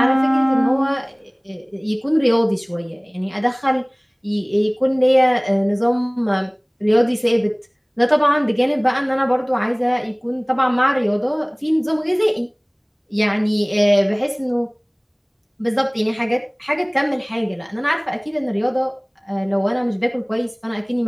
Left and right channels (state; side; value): identical; both; correlation 1.00